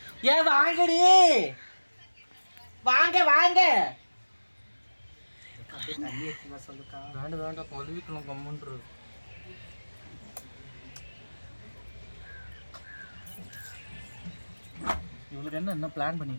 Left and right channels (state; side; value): inverted; both; correlation -1.00